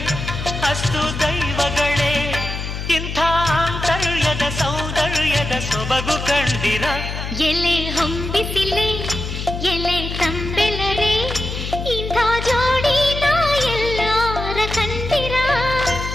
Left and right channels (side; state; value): left; noise; hum, 6 dB below the sound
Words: ಅಸ್ತು ದೈವಗಳೇ ಇಂಥ ಆಂತರ್ಯದ ಸೌಂದರ್ಯದ ಸೊಬಗು ಕಂಡಿರ